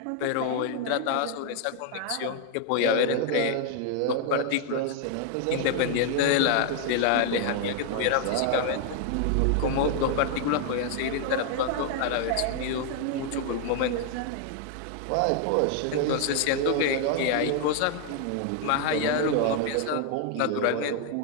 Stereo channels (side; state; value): both; different; correlation 0.00